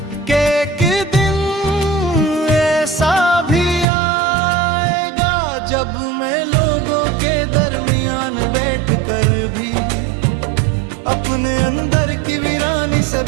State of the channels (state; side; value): drops out; left; at 3.9 s